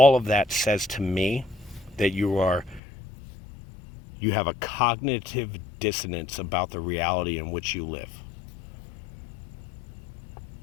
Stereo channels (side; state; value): right; drops out; at 2.8 s